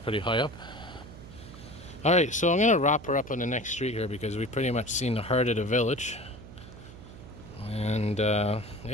high up. Alright, so I'm going to wrap her up on the next street here because we've pretty much seen the heart of the village. And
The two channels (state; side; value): noise; right; hum, 16 dB below the sound